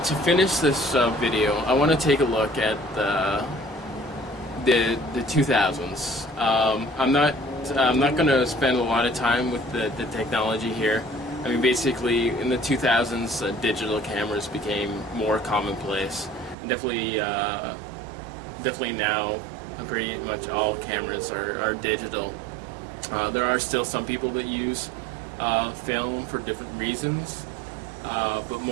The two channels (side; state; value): left; drops out; at 16.6 s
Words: to finish this video, I want to take a look at the 2000s. I'm not going to spend a lot of time with the technology here. I mean, basically, in the 2000s, digital cameras became more commonplace. And definitely now, pretty much all cameras are digital. There are still some people that use film for different reasons. But